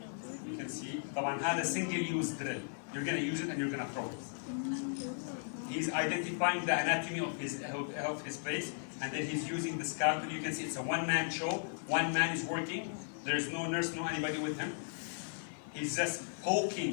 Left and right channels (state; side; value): silent; right; digital silence